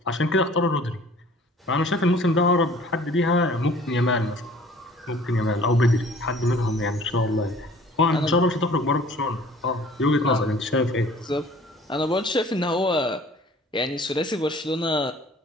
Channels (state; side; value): normal; both; correlation 0.51